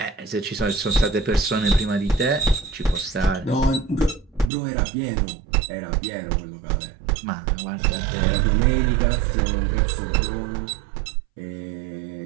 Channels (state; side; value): drops out; left; at 4.5 s